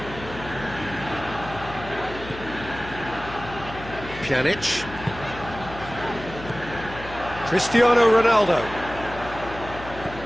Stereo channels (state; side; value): noise; left; hum, 13 dB below the sound